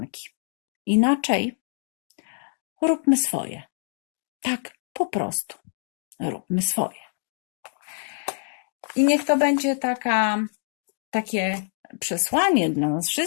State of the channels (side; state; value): right; silent; digital silence